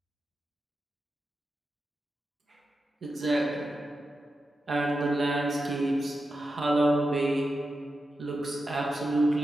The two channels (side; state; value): both; normal; correlation 0.89